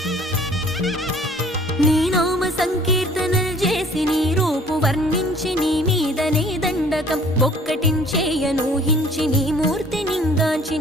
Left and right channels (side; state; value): both; normal; correlation 0.54